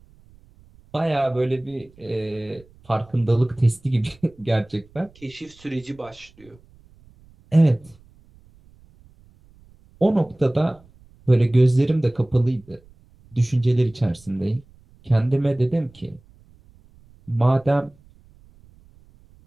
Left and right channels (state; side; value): noise; right; rumble, 28 dB below the sound